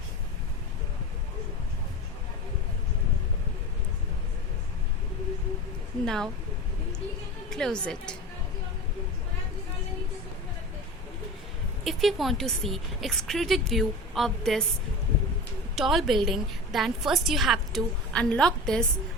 Now close it. If you want to see extruded view of this tall building, then first you have to unlock this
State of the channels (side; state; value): both; normal; correlation 0.31